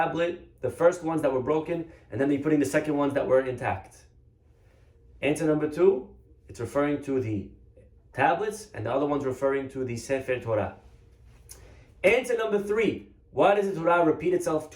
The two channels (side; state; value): both; identical; correlation 1.00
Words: the first ones that were broken, and then you're putting the second ones that were intact. Answer number two, it's referring to the tablets, and the other one's referring to the Sefer Torah. Answer number three, why does the Torah repeat itself